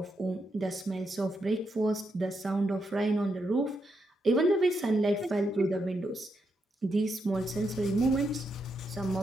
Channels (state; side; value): normal; both; correlation 0.82